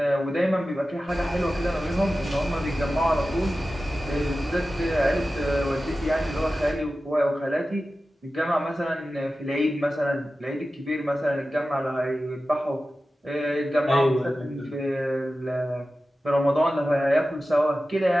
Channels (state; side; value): normal; both; correlation 0.94